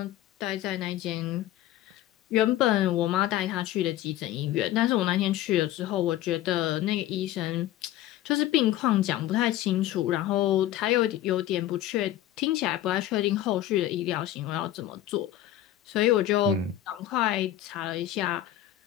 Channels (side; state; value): right; quieter; 13.2 dB